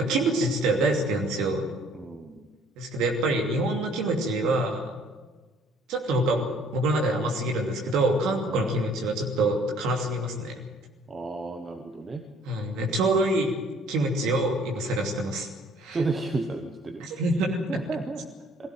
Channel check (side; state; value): both; normal; correlation 0.58